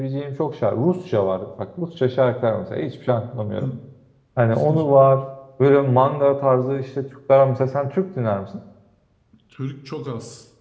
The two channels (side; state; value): both; identical; correlation 1.00